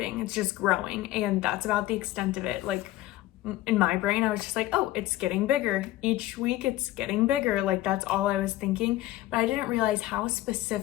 It's just growing, and that's about the extent of it. Like in my brain, I was just like, oh, it's getting bigger. Each week it's getting bigger. Like that's all I was thinking. But I didn't realize how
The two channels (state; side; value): quieter; right; 16.0 dB